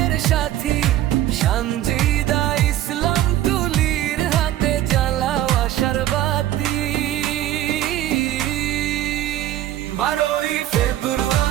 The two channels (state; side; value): quieter; left; 13.1 dB